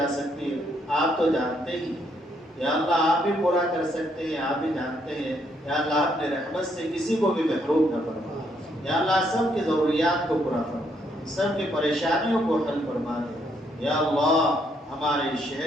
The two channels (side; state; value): both; normal; correlation 0.73